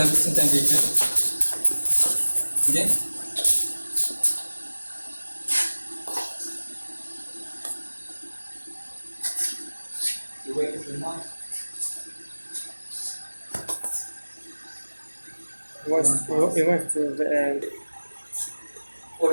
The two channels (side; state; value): both; inverted; correlation -1.00